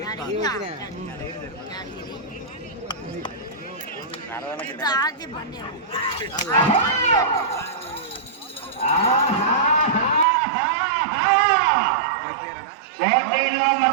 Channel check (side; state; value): left; drops out; at 10.2 s